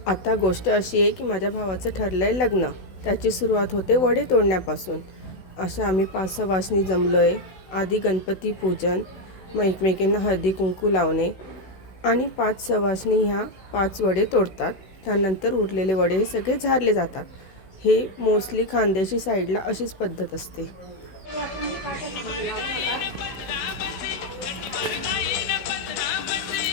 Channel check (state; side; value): late; right; 16 ms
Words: आता गोष्ट अशी आहे की माझ्या भावाचं ठरलं आहे लग्न. त्याची सुरुवात होते वडे तोडण्यापासून. अशा आम्ही 5 सवाष्णी जमलो आहे. आधी गणपती पूजन, मग एकमेकींना हळदी कुंकू लावणे आणि 5 सवाष्णी ह्या 5 वडे तोडतात. त्यानंतर उरलेले वडे हे सगळे झारले जातात. हे मोस्टली खानदेशी साईडला अशीच पद्धत असते.